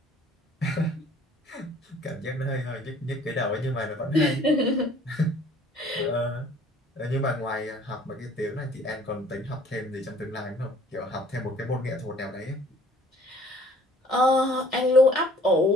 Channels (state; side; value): normal; both; correlation 0.54